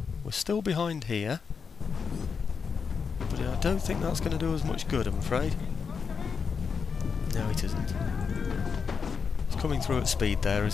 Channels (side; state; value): right; quieter; 5.9 dB